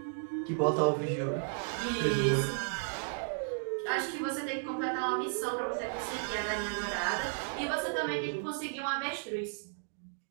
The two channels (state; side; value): silent; left; digital silence